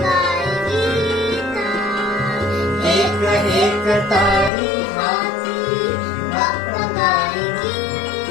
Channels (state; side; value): drops out; right; at 4.5 s